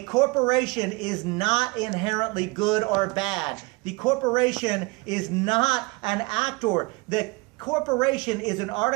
corporation is not inherently good or bad. The corporation is not an actor. The corporation is an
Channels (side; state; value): left; quieter; 26.2 dB